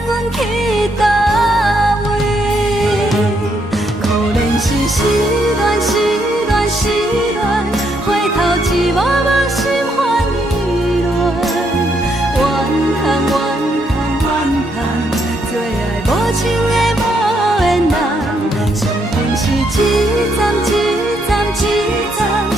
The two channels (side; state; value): both; normal; correlation 0.75